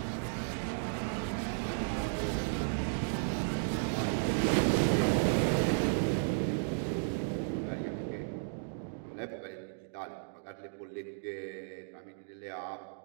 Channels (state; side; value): silent; left; digital silence